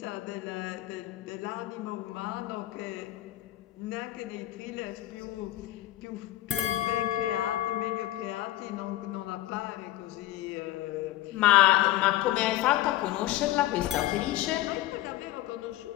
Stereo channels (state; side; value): quieter; right; 15.5 dB